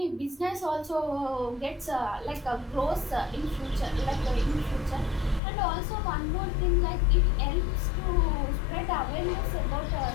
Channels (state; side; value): drops out; right; at 5.4 s